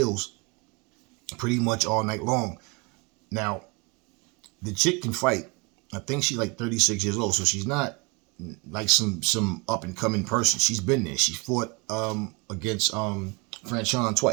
pretty much all night long. Now, the chick can fight. I think she's like 36 years old, so she's not like some up and coming person. She's been there. She fought against Franchon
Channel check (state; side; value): quieter; left; 28.3 dB